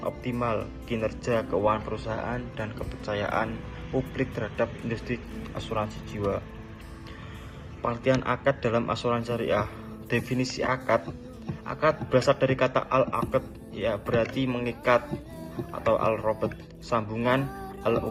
optimal, kinerja keuangan perusahaan, dan kepercayaan publik terhadap industri asuransi jiwa. Pengertian akad dalam asuransi syariah. Definisi akad berasal dari kata al-aqd, ya berarti mengikat, atau al-robot, sambungan,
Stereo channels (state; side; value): identical; both; correlation 1.00